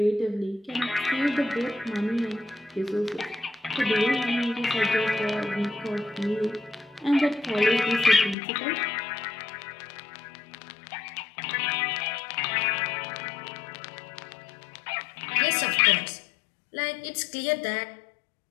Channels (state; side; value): drops out; right; at 8.3 s